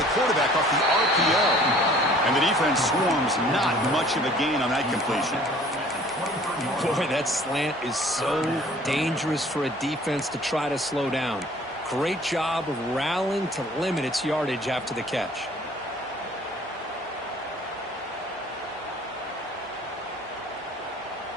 quarterback off the RPO. And the defense swarms. Not much of a gain on that completion. Boy, that slant is so dangerous for a defense to try to slow down. Great job of rallying to limit its yardage after the catch.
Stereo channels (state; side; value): normal; both; correlation 0.52